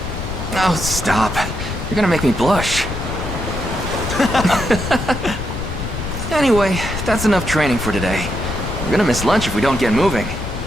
Oh, stop. You're gonna make me blush. Anyway, that's enough training for today. We're gonna miss lunch if we don't get moving.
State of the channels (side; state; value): left; noise; rumble, 6 dB below the sound